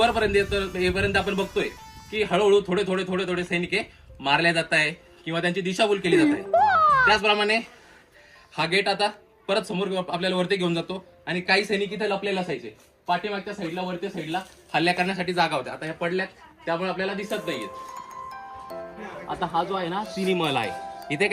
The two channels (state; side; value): identical; both; correlation 1.00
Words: येपर्यंत आपण बघतोय की हळूहळू थोडे थोडे थोडे थोडे सैनिक मारल्या जात आहे किंवा त्यांची दिशाभूल केली जात आहे. त्याचप्रमाणे हा गेट आता परत समोर आपल्याला वरती घेऊन जातो आणि काही सैनिक इथे लपलेले असायचे. पाठीमागच्या साईडला, वरच्या साईडला हल्ल्या करण्यासाठी जागा होत्या. आता ह्या पडल्यात, त्यामुळे आपल्याला दिसत नाहीयेत. आता हा जो आहे ना, सिनी महल आहे. इथे